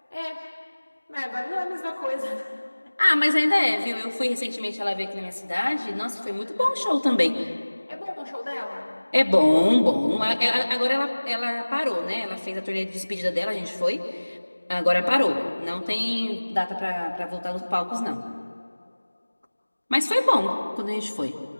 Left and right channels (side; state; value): both; inverted; correlation -1.00